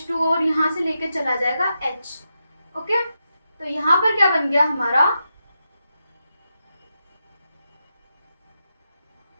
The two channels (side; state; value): both; inverted; correlation -0.87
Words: और यहाँ से लेके चला जाएगा H। ओके, तो यहाँ पर क्या बन गया हमारा,